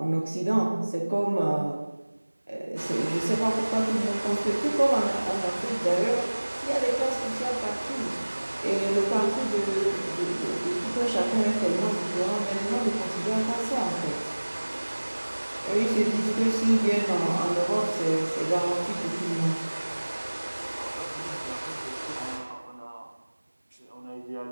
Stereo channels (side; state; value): both; inverted; correlation -1.00